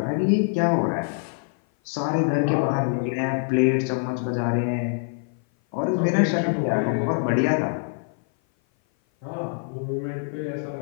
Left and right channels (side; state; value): right; silent; 57 dB below the other